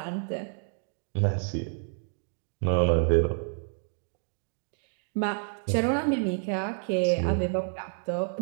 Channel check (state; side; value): silent; left; 58 dB below the other